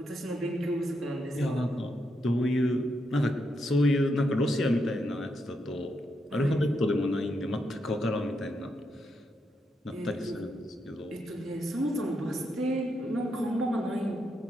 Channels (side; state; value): both; normal; correlation 0.81